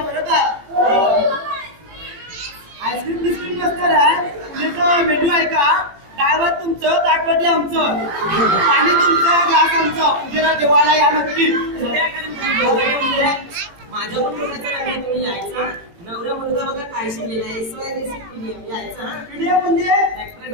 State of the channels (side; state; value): left; late; 18 ms